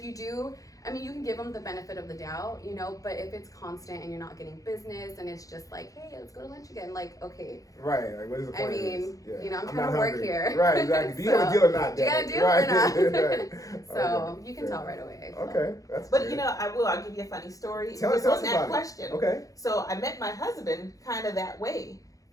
you do, I mean, you can give them the benefit of the doubt, but if it's constant and you're not getting business and it's just like, hey, let's go to lunch again, like, okay, Right. Like, what is the I point of mean, this? Yeah. I'm not trying to work hungry. here. Right. Exactly. Do you have a So, deal or not? do you got a Daddy? deal or Right. not? Right. So Okay. you can tell right away. So. Okay. That's But good. I'll give you a funny story Tell just us on that about it. question. Okay. So I met my husband kind of that way.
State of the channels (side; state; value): right; late; 0.17 ms